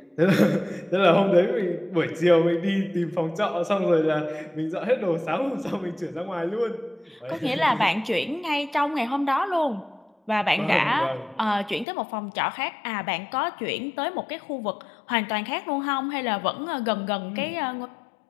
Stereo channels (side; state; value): right; drops out; at 11.9 s